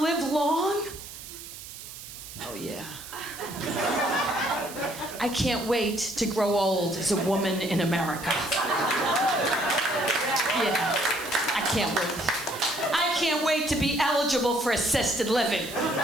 long? Oh, yeah. I can't wait to grow old as a woman in America. Yeah, I can't wait. I can't wait to be eligible for assisted living.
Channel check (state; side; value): noise; right; hiss, 13 dB below the sound